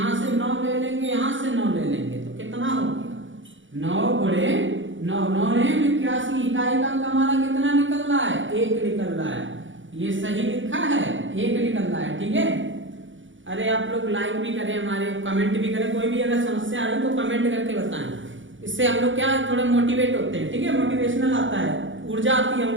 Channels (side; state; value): left; late; 0.56 ms